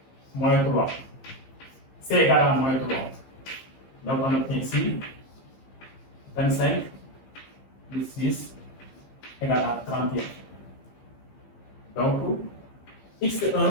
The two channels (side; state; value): right; late; 15 ms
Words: moins 3. C égale à moins 3. Donc, on obtient ici 25 plus 6 égale à 31. Donc,